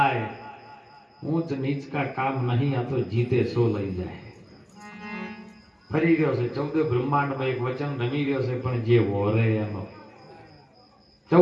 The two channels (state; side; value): identical; both; correlation 1.00